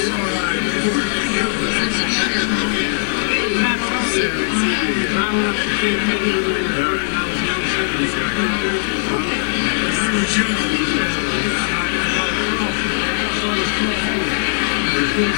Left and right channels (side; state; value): right; silent; digital silence